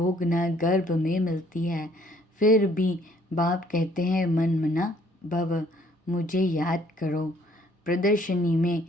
गर्भ में मिलती है। फिर भी बाप कहते हैं, मन मना भव, मुझे याद करो। प्रदर्शनी में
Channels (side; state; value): both; normal; correlation 0.62